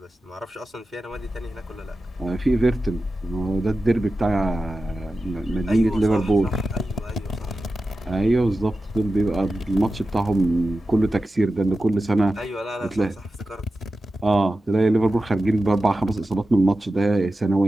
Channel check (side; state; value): both; normal; correlation 0.93